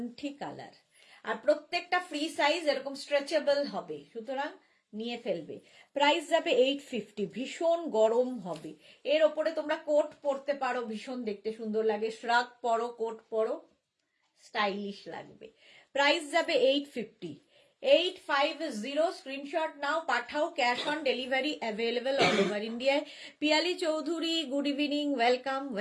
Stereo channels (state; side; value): identical; both; correlation 1.00